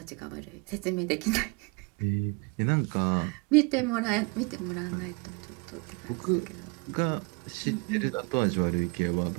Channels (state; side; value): quieter; left; 31.7 dB